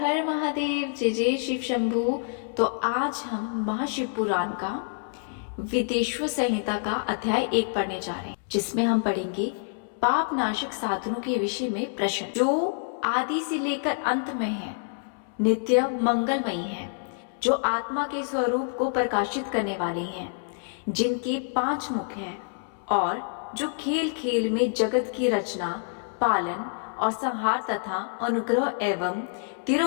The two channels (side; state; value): right; silent; 60 dB below the other